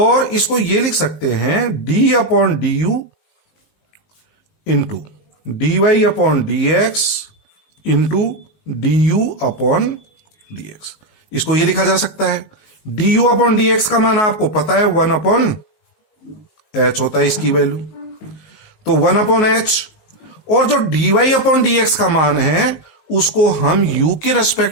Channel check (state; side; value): late; right; 19 ms